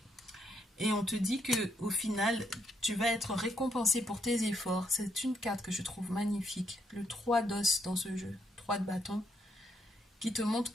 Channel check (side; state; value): both; normal; correlation 0.74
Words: Et on te dit que au final, tu vas être récompensé pour tes efforts. C'est une carte que je trouve magnifique. Le 3 d'os dans ce jeu, 3 de bâton, qui te montre